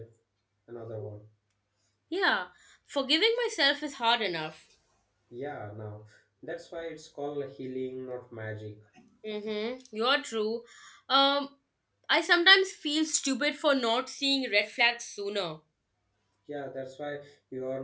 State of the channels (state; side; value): identical; both; correlation 1.00